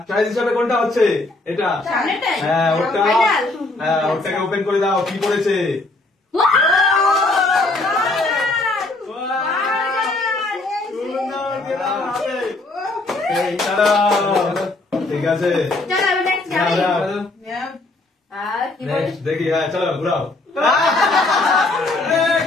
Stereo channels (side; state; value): right; quieter; 3.0 dB